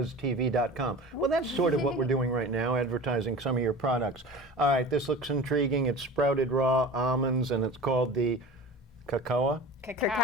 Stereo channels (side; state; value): both; normal; correlation 0.36